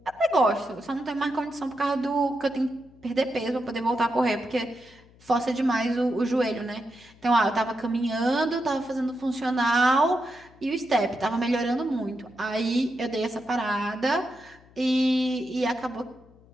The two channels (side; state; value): left; noise; hum, 26 dB below the sound